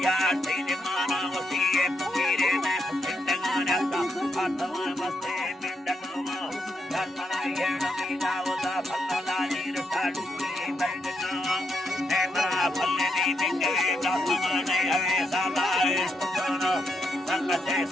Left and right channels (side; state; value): both; normal; correlation 0.80